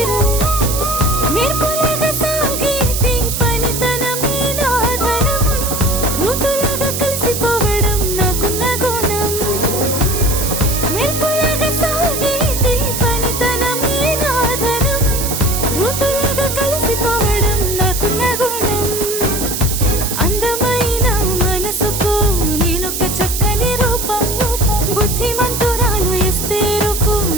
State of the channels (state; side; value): noise; right; hiss, 3 dB below the sound